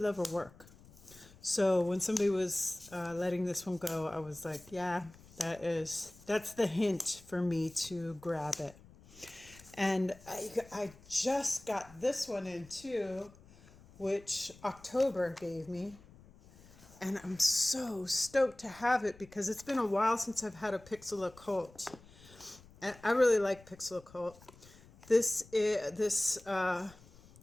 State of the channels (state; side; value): noise; left; rumble, 23 dB below the sound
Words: love her work. So when somebody was letting this one go, I was like, yeah, that's the hint for me to grab it. And I just got this one in too, which October gave me. And I'm so stoked to have it because it's been a while since I've had a Pixel Occult. And I really like Pixel Occult. This